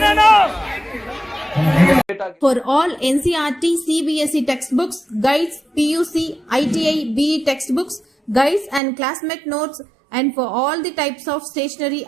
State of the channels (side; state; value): left; drops out; at 8.8 s